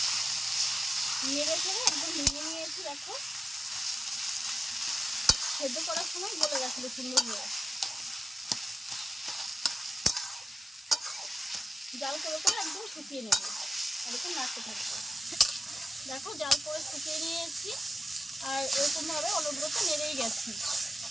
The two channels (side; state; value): both; normal; correlation 0.92